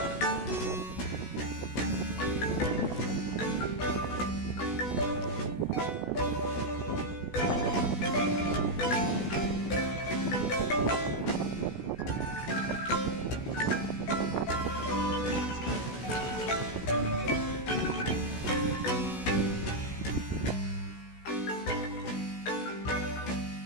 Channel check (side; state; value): right; late; 16 ms